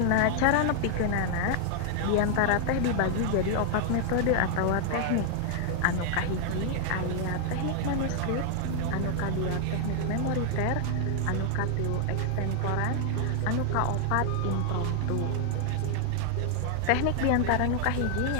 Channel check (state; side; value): different; both; correlation 0.00